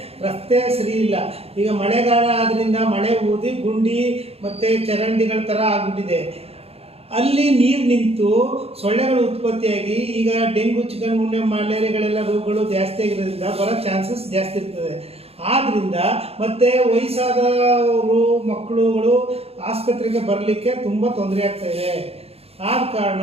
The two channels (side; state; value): left; late; 0.29 ms